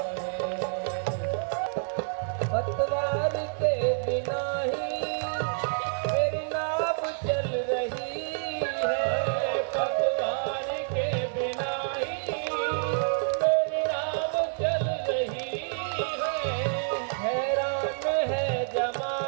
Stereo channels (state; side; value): silent; left; 59 dB below the other